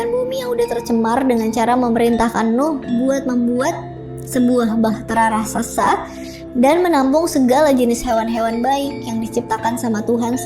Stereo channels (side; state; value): both; identical; correlation 1.00